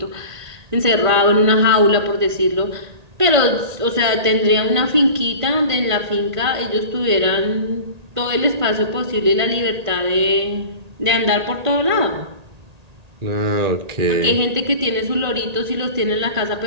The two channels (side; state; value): left; late; 1.8 ms